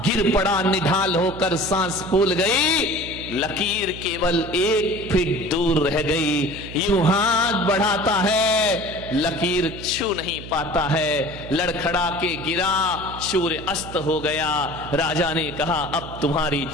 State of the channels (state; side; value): noise; right; hum, 12 dB below the sound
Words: गिर पड़ा, निढाल होकर सांस फूल गई। लकीर केवल 1 फीट दूर रह गई। यूं हाथ बढ़ाता है, लकीर छू नहीं पाता है, लड़खड़ा के गिरा, सूर्य अस्त हो गया। राजा ने कहा अब तुम्हारी